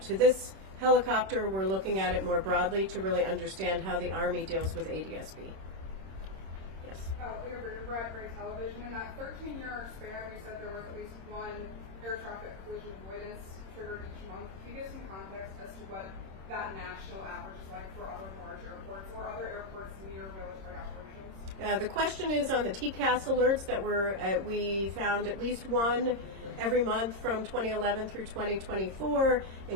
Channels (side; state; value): left; late; 26 ms